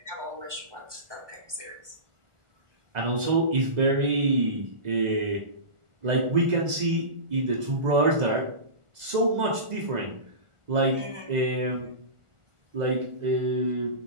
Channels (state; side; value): late; left; 1.4 ms